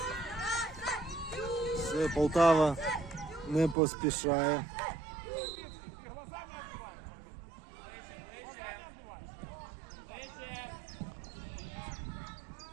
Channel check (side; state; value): left; drops out; at 3.8 s